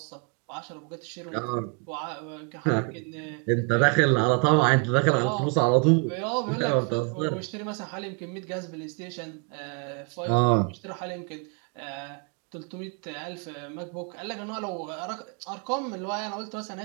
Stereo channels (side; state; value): left; quieter; 33.7 dB